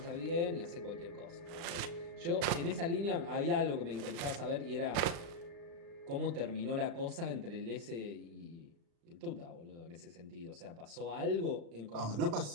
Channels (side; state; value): left; late; 35 ms